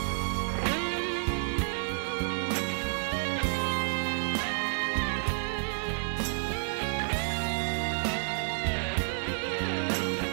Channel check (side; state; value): left; silent; 58 dB below the other